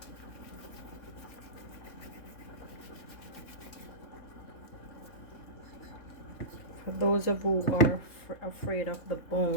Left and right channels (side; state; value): right; late; 3.6 ms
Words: those of you who are afraid of the